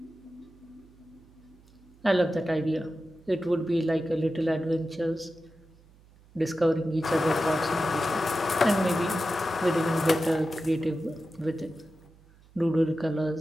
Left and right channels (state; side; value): noise; right; hum, 27 dB below the sound